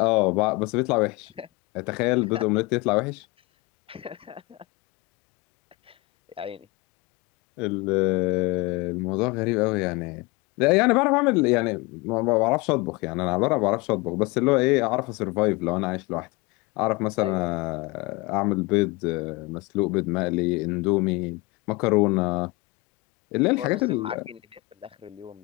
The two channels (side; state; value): right; quieter; 23.7 dB